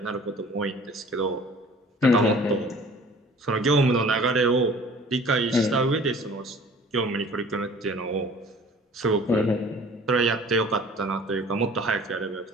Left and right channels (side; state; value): both; normal; correlation 0.49